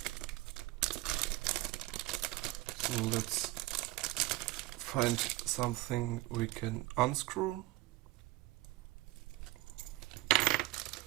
So let's find something we can unscrew.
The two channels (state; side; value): quieter; left; 19.7 dB